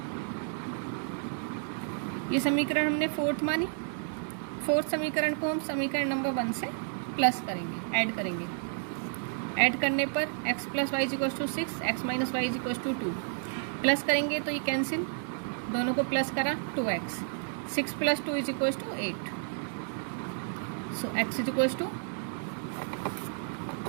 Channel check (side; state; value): left; silent; 57 dB below the other